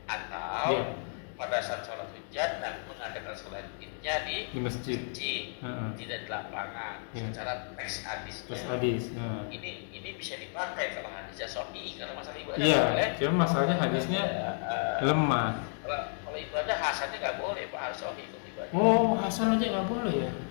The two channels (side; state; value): right; silent; 56 dB below the other